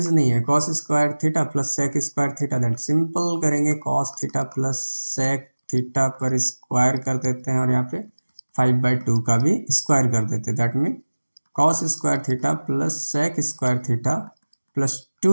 नहीं है। Cos square theta plus sec square theta, that simple करेंगे cos theta plus sec theta पर स्क्वायर कर देते हैं और यहाँ पे 5/2 का भी स्क्वायर कर देते हैं, that mean cos square theta plus sec square theta plus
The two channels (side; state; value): both; inverted; correlation -1.00